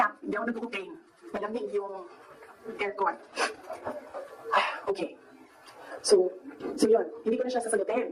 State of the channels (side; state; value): both; identical; correlation 1.00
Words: hindi ako nag-cocaine. Malamig yung aircon. Okay. So yun, hindi ko na siya